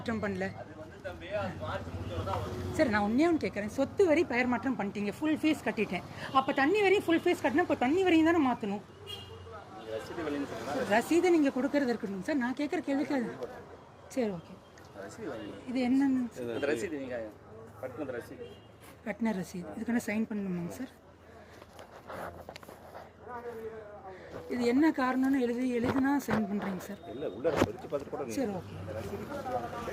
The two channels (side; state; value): both; identical; correlation 1.00